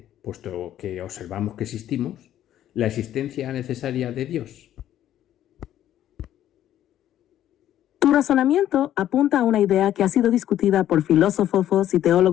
puesto que observamos que existimos, la existencia necesaria de Dios. Tu razonamiento apunta a una idea que ha sido discutida por filósofos y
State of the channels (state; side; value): quieter; right; 11.9 dB